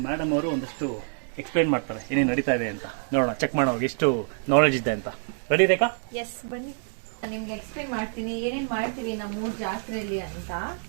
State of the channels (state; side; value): silent; left; 60 dB below the other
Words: ಮೇಡಮ್ ಅವರು ಒಂದಷ್ಟು ಎಕ್ಸ್ಪ್ಲೈನ್ ಮಾಡ್ತಾರೆ ಏನೇನು ನಡೀತಾ ಇದೆ ಅಂತ. ನೋಡೋಣ, ಚೆಕ್ ಮಾಡೋಣ ಎಷ್ಟು ನಾಲೆಜ್ ಇದೆ ಅಂತ. ರೆಡಿ ರೇಖಾ? ಎಸ್, ಬನ್ನಿ. ನಿಮ್ಗೆ ಎಕ್ಸ್ಪ್ಲೈನ್ ಮಾಡ್ತೀನಿ ಏನೇನ್ ಮಾಡ್ತೀವಿ ನಮ್ಮೂರ್ ಜಾತ್ರೆಯಲ್ಲಿ ಅಂತ.